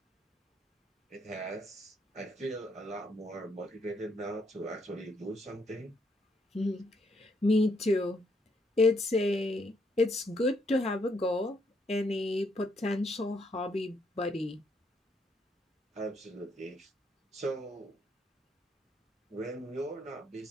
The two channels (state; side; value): normal; both; correlation 0.74